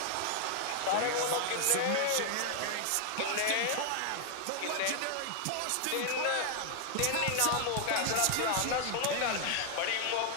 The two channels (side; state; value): both; different; correlation 0.00